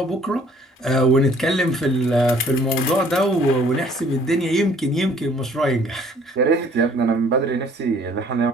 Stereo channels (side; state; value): both; normal; correlation 0.57